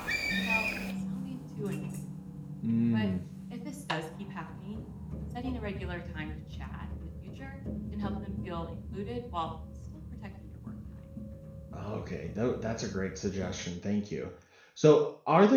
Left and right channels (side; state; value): both; identical; correlation 1.00